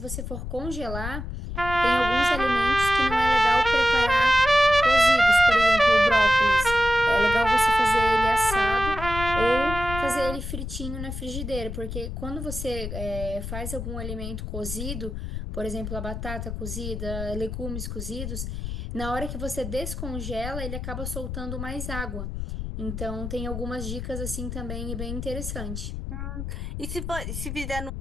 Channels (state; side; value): noise; left; rumble, 6 dB below the sound